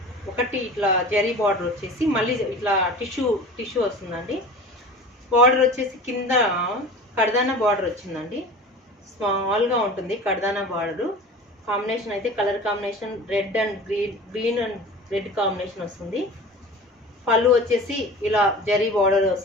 ఒకటి ఇట్లా జరీ బార్డర్ వచ్చేసి మళ్ళీ ఇట్లా టిష్యూ వస్తుందండి. బార్డర్ వచ్చేసి కింద కడదానా బార్డర్ వచ్చిందండి. స్మాల్గా ఉంటుంది కడదానా బార్డర్. కాంబినేషన్ అయితే colour combination red and green and red combination వస్తుంది. పళ్ళు వచ్చేసి ఇలా జరీ బార్డర్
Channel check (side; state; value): both; normal; correlation 0.38